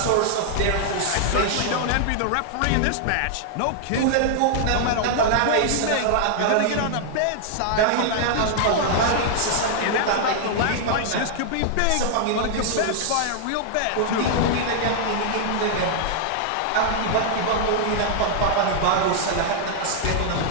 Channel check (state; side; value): different; both; correlation -0.01